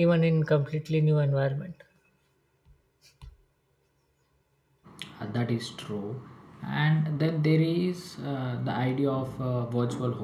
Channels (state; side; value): identical; both; correlation 1.00